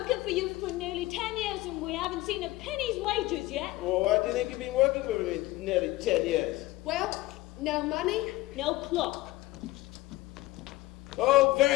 for you for nearly 10 years, and we haven't seen a penny's wages yet. Well, why do you think you've been working for me nearly 10 years? Well, no money? No clock. Oh,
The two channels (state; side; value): quieter; right; 18.5 dB